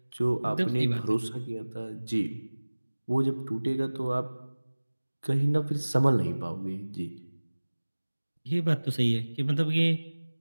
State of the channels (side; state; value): both; inverted; correlation -1.00